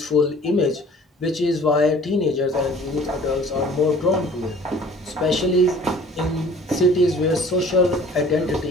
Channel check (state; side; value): normal; both; correlation 0.50